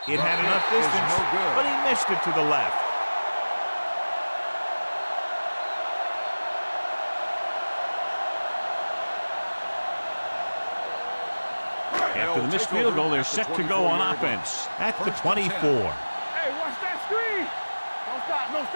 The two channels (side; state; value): both; inverted; correlation -1.00